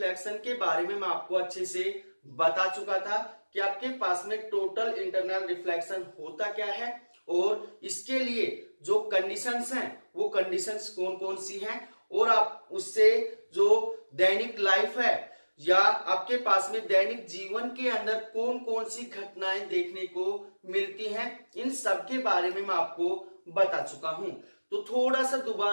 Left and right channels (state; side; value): inverted; both; correlation -1.00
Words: के बारे में मैं आपको अच्छे से बता चुका था कि आपके पास में टोटल इंटरनल रिफ्लेक्शन होता क्या है और इसके लिए जो कंडीशंस हैं वो कंडीशंस कौन कौन सी हैं और आप उससे जो दैनिक लाइफ है या आपके पास में दैनिक जीवन के अंदर कौन कौन सी घटनाएं देखने को मिलती हैं, इन सब के बारे में मैं आपको बता चुका हूं। तो थोड़ा सा